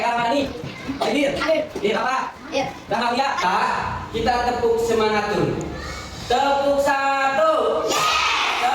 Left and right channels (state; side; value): identical; both; correlation 1.00